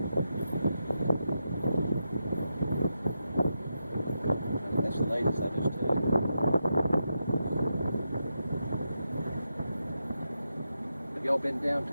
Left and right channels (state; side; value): inverted; both; correlation -0.86